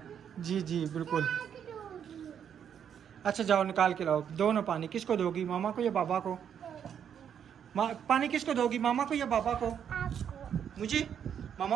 जी जी बिल्कुल। अच्छा जाओ निकाल के लाओ, दो ना पानी। किसको दोगी, मामा को या बाबा को? पानी किसको दोगी, मामा को या बाबा को? मुझे।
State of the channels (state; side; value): quieter; left; 8.5 dB